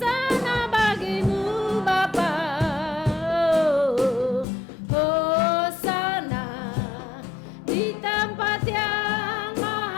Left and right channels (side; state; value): right; drops out; at 4.5 s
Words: bagi-Mu Bapa. Hosana di tempat yang